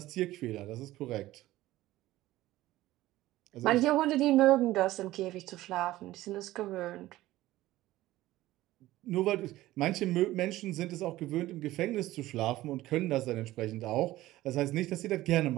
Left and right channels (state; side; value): quieter; left; 16.2 dB